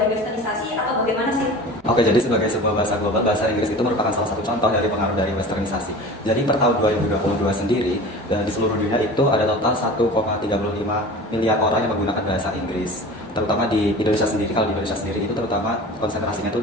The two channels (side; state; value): both; normal; correlation 0.37